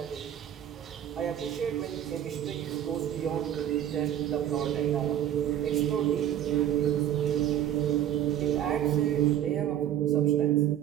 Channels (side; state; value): left; quieter; 10.9 dB